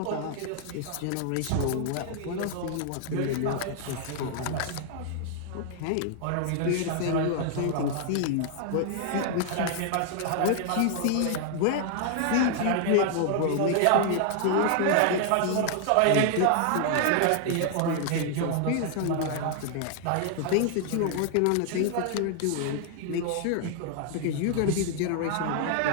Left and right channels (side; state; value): both; different; correlation 0.00